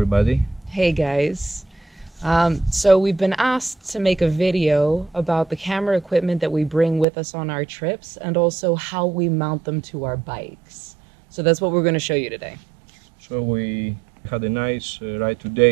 Hey guys. So we've been asked to make a video about the camera equipment that we bring with us on our trips and also how we mount them to our bikes. So that's what we're going to show you today. So we had a nice ride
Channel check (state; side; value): drops out; left; at 7.1 s